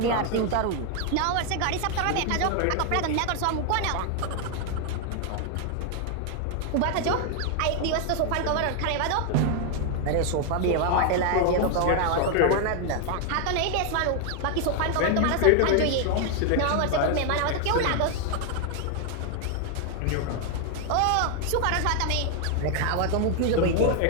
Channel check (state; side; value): different; both; correlation 0.00